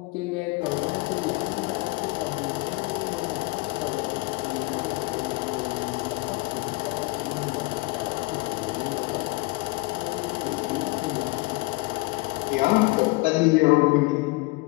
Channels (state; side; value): quieter; right; 23.6 dB